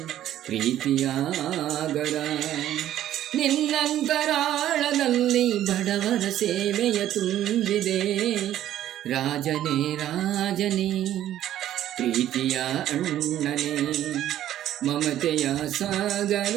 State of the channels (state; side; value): quieter; left; 12.3 dB